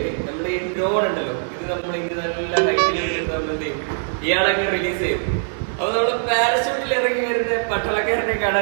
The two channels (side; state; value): left; silent; 64 dB below the other